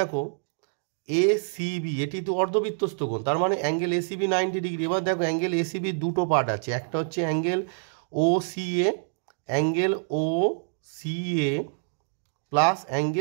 ACB এটি তো অর্ধবৃত্তস্থ কোণ, তার মানে অ্যাঙ্গেল ACB 90 ডিগ্রি। এবার দেখো অ্যাঙ্গেল ACB দুটো পার্ট আছে, একটা হচ্ছে angle OCA, angle OCA plus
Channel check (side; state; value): left; silent; digital silence